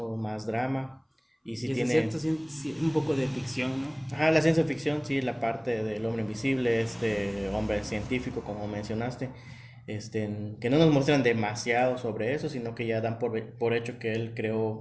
más drama. Y si Y es tiene cierto, un poco de ficción, ¿no? La ciencia ficción, sí, la parte del hombre invisible, este hombre científico, como mencionaste, que no nos muestran demasiado sobre eso, sino que ya dan por hecho que él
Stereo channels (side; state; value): both; identical; correlation 1.00